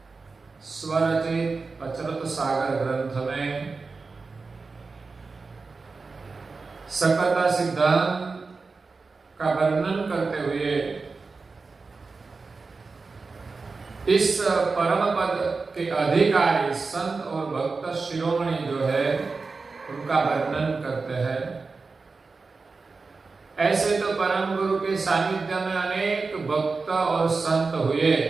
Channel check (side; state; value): left; quieter; 4.2 dB